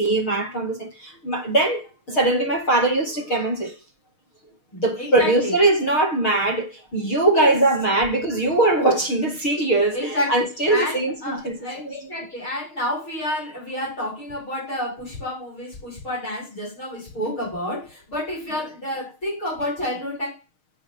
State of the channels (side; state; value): right; late; 6.4 ms